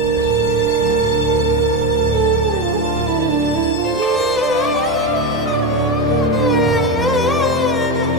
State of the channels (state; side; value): normal; both; correlation 0.16